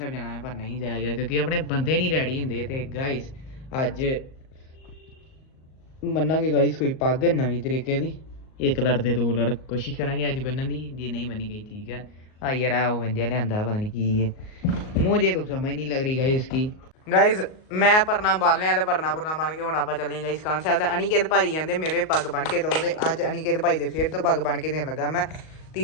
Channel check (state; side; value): late; right; 38 ms